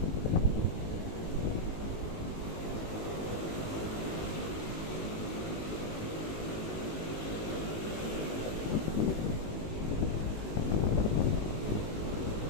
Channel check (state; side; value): late; right; 19 ms